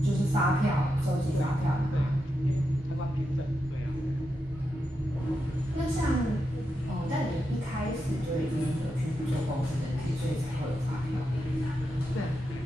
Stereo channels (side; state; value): both; normal; correlation 0.86